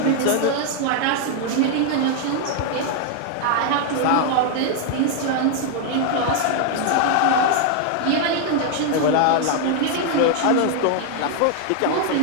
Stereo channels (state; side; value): different; both; correlation 0.00